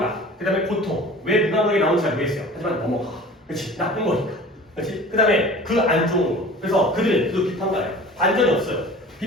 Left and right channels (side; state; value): both; normal; correlation 0.42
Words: 그 다음에 고통. 왜 무감각이 나오는지 잘 모르겠어요. 하지만 넘어가. 그렇지, 나쁜 거니까. 그렇지? 그 다음에 그 안 좋은 거. 그래서 그들은 계속 비판가예요. 반전이 없어요.